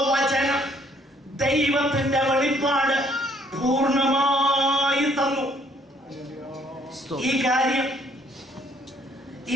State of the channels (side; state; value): both; normal; correlation 0.64